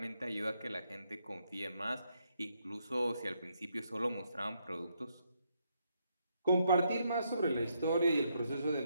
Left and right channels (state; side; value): inverted; both; correlation -0.76